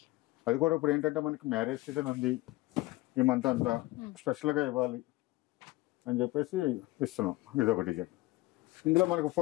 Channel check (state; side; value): quieter; right; 19.5 dB